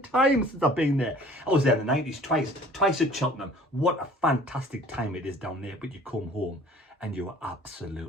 time since I've been there. I was there in the 90s twice at Cheltenham. What a fantastic time it is down there, but you come home and you are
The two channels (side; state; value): both; normal; correlation 0.50